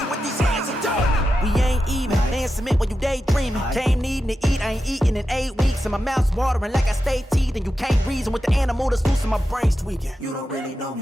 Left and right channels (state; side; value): normal; both; correlation 0.90